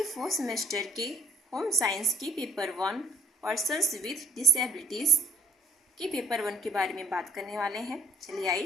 फोर्थ सेमेस्टर के होम साइंस की पेपर 1 पर्सन्स विथ डिसेबिलिटीज़ के पेपर 1 के बारे में बात करने वाले हैं। चलिए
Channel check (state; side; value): normal; both; correlation 0.63